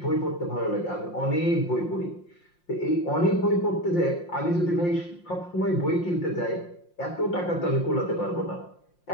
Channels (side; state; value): right; late; 5.7 ms